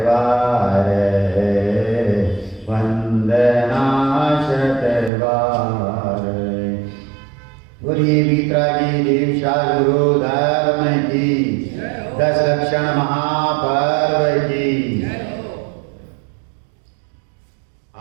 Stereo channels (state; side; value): drops out; left; at 5.1 s